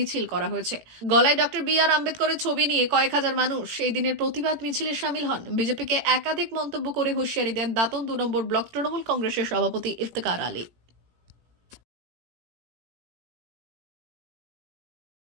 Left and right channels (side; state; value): left; late; 18 ms